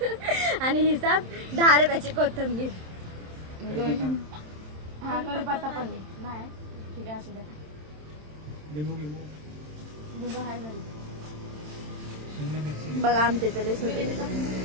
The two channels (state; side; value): late; left; 27 ms